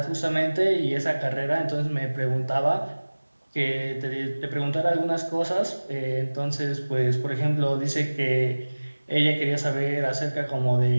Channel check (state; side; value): inverted; both; correlation -1.00